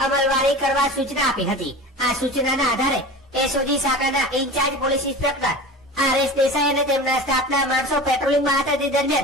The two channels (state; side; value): normal; both; correlation 0.33